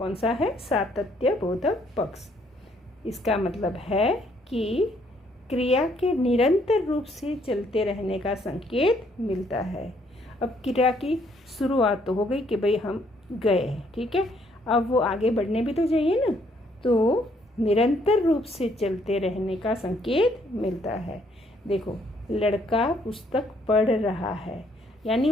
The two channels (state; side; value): normal; both; correlation 0.67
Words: सा है? सातत्य बोधक पक्ष। इसका मतलब है कि क्रिया के निरंतर रूप से चलते रहने का संकेत मिलता है। अब क्रिया की शुरुआत तो हो गई कि भाई हम गए, ठीक है, अब वो आगे बढ़ने भी तो चाहिए ना, तो निरंतर रूप से चलते रहने का संकेत मिलता है। देखो, लड़का पुस्तक पढ़ रहा है, यानी